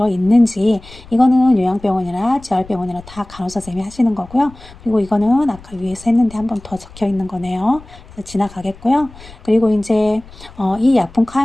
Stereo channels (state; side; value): noise; left; rumble, 20 dB below the sound